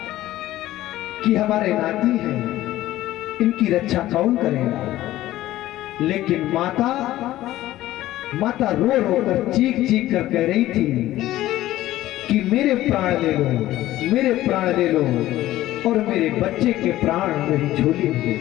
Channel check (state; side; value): quieter; right; 15.1 dB